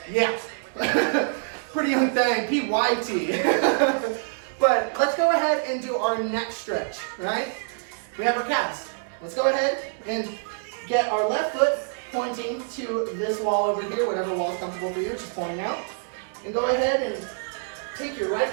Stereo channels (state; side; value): silent; left; digital silence